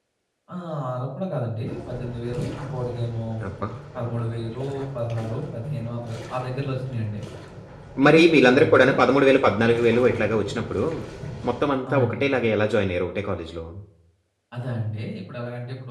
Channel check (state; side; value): identical; both; correlation 1.00